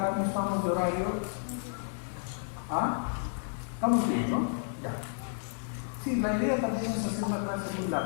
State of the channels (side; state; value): right; silent; digital silence